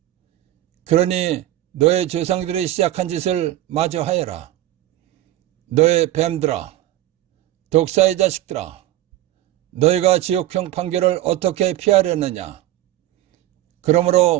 그러니 너의 조상들이 시작한 짓을 마저 하여라. 너의 뱀들아, 독사의 자식들아, 너희가 지옥형 판결을 어떻게 피하려느냐.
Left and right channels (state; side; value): quieter; left; 14.4 dB